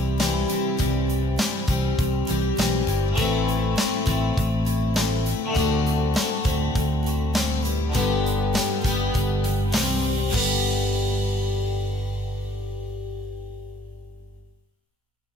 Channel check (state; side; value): normal; both; correlation 0.63